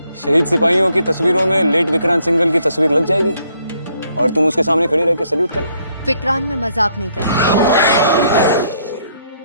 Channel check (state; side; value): inverted; both; correlation -0.69